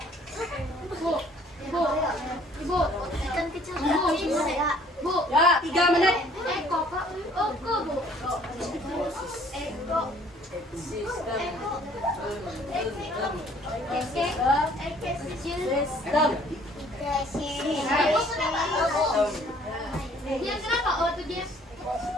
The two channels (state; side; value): normal; both; correlation 0.58